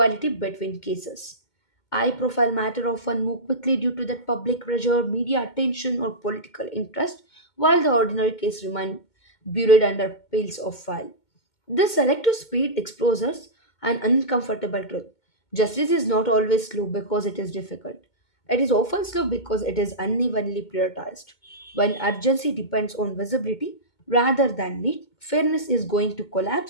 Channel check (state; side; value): late; right; 2.2 ms